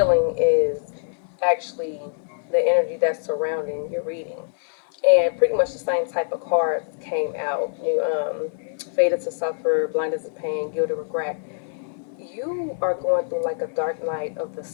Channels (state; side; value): silent; right; 63 dB below the other